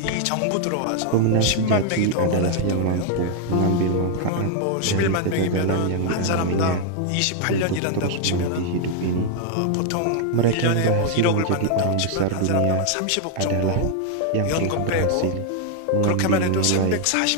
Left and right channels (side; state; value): both; different; correlation 0.00